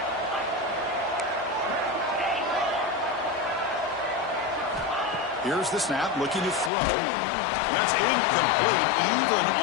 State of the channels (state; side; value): drops out; right; at 6.7 s